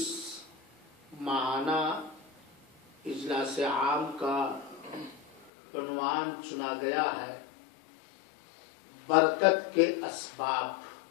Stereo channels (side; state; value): right; drops out; at 5.5 s